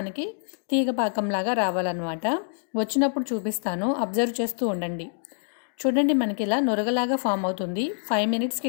తీగ పాకంలాగా రావాలన్నమాట. వచ్చినప్పుడు చూపిస్తాను, అబ్జర్వ్ చేస్తూ ఉండండి. చూడండి, మనకి ఇలా నురగలాగా ఫామ్ అవుతుంది. 5 మినిట్స్కి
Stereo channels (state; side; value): silent; right; digital silence